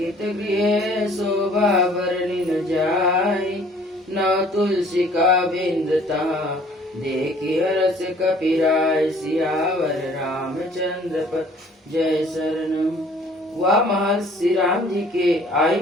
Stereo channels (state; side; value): normal; both; correlation 0.55